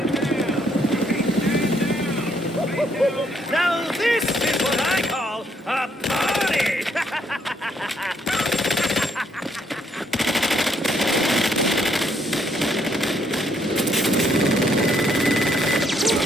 Now this is what I call a party!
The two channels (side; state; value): both; normal; correlation 0.71